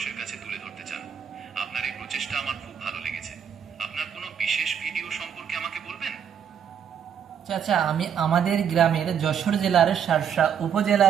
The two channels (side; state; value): left; quieter; 8.1 dB